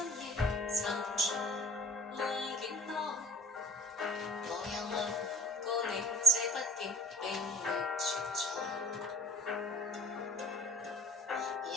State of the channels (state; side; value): normal; both; correlation 0.57